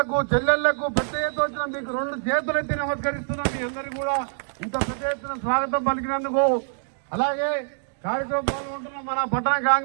చెల్లెళ్లకు పెద్ద ఎత్తున వచ్చిన మీకు 2 చేతులెత్తి నమస్కరిస్తున్నాం. మీ అందరికీ కూడా ఇంత పెద్ద ఎత్తున స్వాగతం పలికినందుకు. అలాగే కార్యక్రమం పాల్గొంటున్న మన పట్టణ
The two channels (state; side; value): silent; left; digital silence